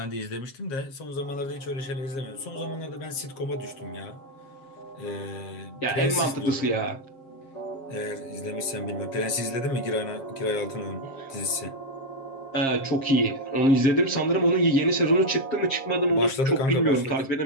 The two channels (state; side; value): late; right; 7.5 ms